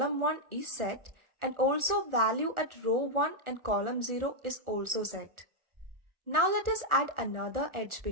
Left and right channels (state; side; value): late; left; 1.4 ms